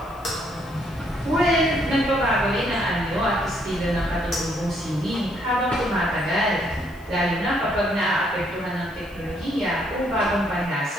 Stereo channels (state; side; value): noise; left; hiss, 27 dB below the sound